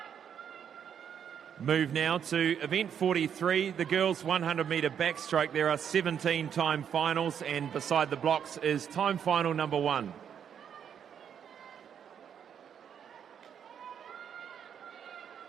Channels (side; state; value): left; quieter; 8.3 dB